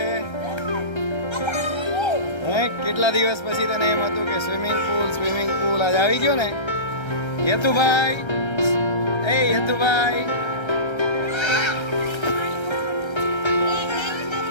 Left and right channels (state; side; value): late; right; 1.3 ms